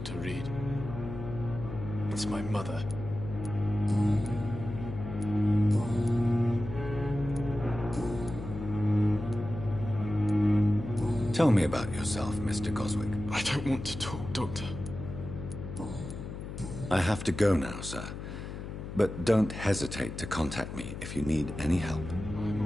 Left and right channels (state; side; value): noise; left; hum, 8 dB below the sound